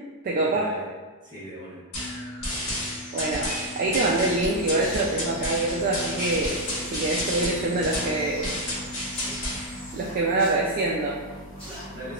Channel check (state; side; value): normal; both; correlation -0.01